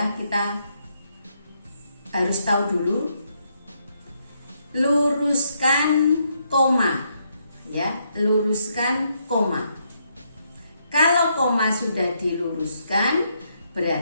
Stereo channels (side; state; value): both; inverted; correlation -0.76